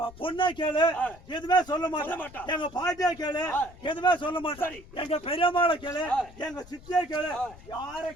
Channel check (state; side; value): noise; left; rumble, 20 dB below the sound